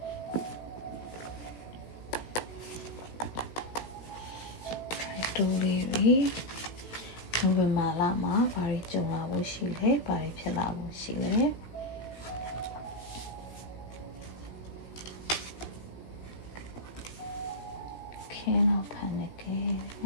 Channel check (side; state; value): right; late; 17 ms